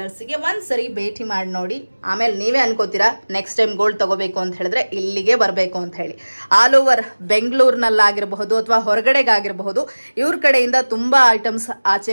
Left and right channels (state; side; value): inverted; both; correlation -1.00